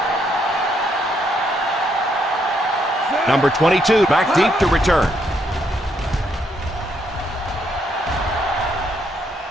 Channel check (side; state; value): both; normal; correlation 0.74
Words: Number 22 back deep to return.